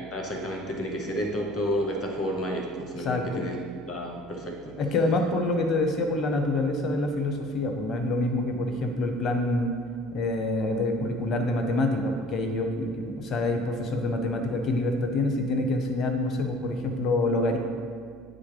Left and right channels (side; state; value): right; noise; hum, 23 dB below the sound